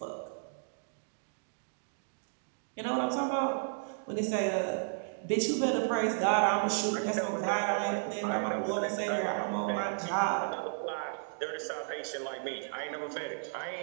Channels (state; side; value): silent; left; digital silence